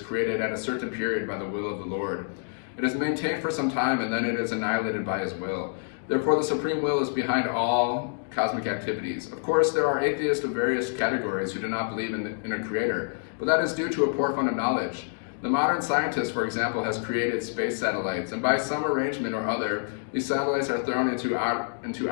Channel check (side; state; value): right; silent; digital silence